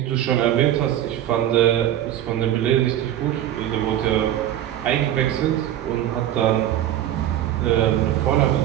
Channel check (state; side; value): quieter; left; 12.0 dB